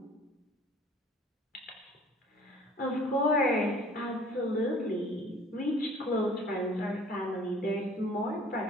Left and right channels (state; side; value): normal; both; correlation 0.51